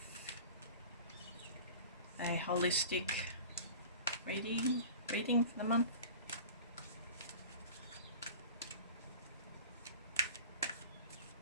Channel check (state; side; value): inverted; both; correlation -0.38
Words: a holistic reading for the month.